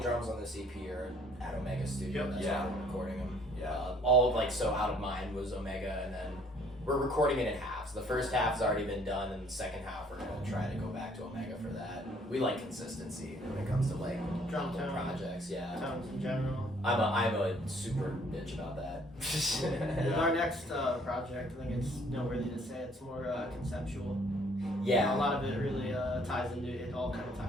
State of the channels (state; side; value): normal; both; correlation 0.60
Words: drums on this EP are at Omega Studio. Yep. That's Yeah. where we're recording them. Yeah. All of like so Out of Mind was Omega, and then we're recording it in halves. The first half has already been done, and the second half we're gonna try to go back to Omega for that. We like consistency when it comes to like Drum little tone. projects. Yeah, Tones in general. I'm a super bitch about that. With our next project, I think it's noteworthy to say it's more conceptual. Yeah. A lot of it really ties into it. All kind of